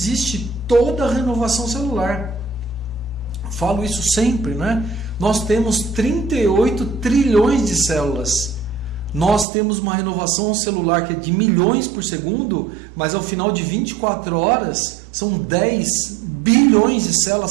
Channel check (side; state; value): left; drops out; at 9.5 s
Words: toda a renovação celular. Falo isso sempre, né? Nós temos 38 trilhões de células. Nós temos uma renovação celular que é de milhões por segundo, mas ao final de 24 horas são 10 bilhões de